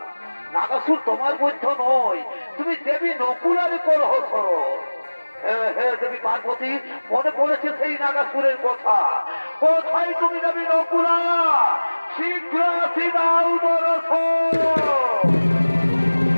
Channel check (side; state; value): both; inverted; correlation -1.00